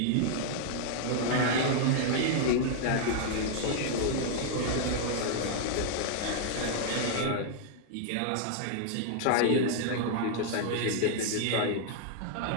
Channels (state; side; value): different; both; correlation -0.01